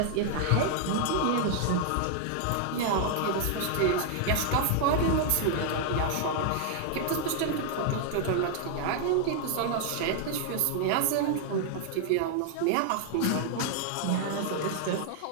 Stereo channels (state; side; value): different; both; correlation 0.00